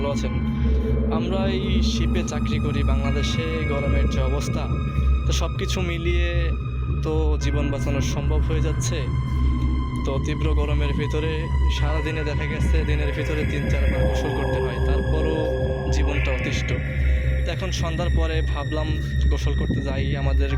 আছেন। আমরা এই শিপে চাকরি করি বাংলাদেশে, গরমের যে অবস্থা, তো সব কিছু মিলিয়ে তো জীবন বাঁচানো সম্ভব হয়ে যাচ্ছে। তো তীব্র গরমের ভিতরে সারাদিনে দেখা গেছে দিনের ভিতরে 3-4 বার গোসল করতে হয়, তারপরও জীবনটা অতিষ্ঠ। তো এখন সন্ধ্যার পরে ভাবলাম গোসল করতে যাই, আমাদের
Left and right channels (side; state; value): both; identical; correlation 1.00